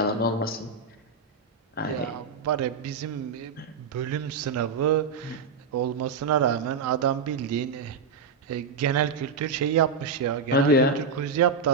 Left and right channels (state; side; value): quieter; left; 4.7 dB